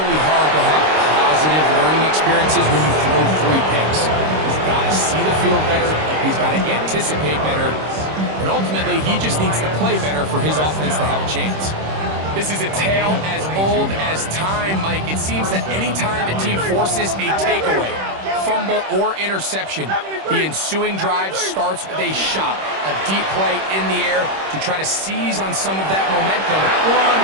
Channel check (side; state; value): left; late; 26 ms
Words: hard to have positive learning experiences when you throw 3 picks. He's got to see the field better. He's got to anticipate better. And ultimately, he just needs to play better for his offense to have a chance. This is a tale as old as time, Mike. It seems that any time a team forces a takeaway, fumble or interception, the ensuing drive starts with a shot, a deep play in the air to try to seize on some of that momentum. That one,